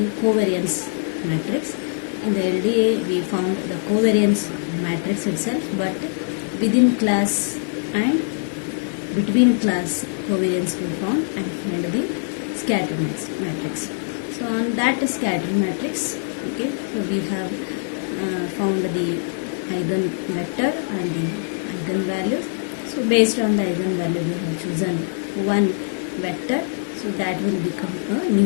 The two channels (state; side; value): silent; right; 64 dB below the other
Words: covariance matrix. In the LDA we found the covariance matrix itself, but within class and between class covariance we found and find the scatter matrix. So on that scatter matrix, okay, so we have found the eigenvector and the eigenvalues. So based on the eigenvalue we have chosen one vector, so that will become a